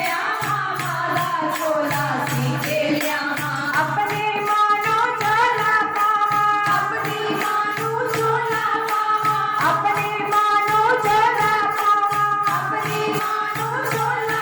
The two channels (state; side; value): identical; both; correlation 1.00